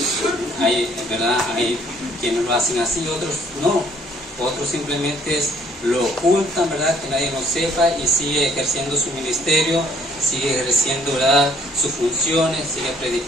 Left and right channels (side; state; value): both; normal; correlation 0.61